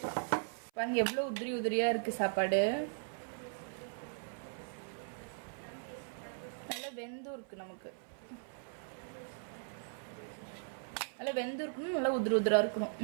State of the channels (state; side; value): silent; left; 52 dB below the other